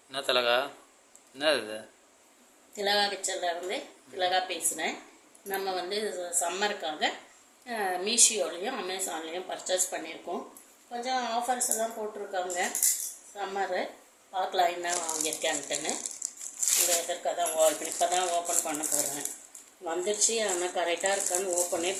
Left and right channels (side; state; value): both; identical; correlation 1.00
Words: என்ன திலகா? என்ன இது? திலகா கிச்சனில் இருந்து திலகா பேசுகிறேன். நம்ம வந்து சம்மருக்காக மீஷோலையும் அமேசான்லேயும் பர்ச்சேஸ் பண்ணியிருக்கோம். கொஞ்சம் ஆஃபர்ஸ் எல்லாம் போட்டிருக்காங்க. சம்மரு பார்க்கலாம் என்ன வாங்கியிருக்கேன்ட்டுன்னு. இந்த இதற்காக தான் இப்போ தான் ஓப்பன் பண்ண போகிறேன். வந்துடுச்சு, ஆனால் கரெக்டாக இருக்கான்னு ஓப்பனே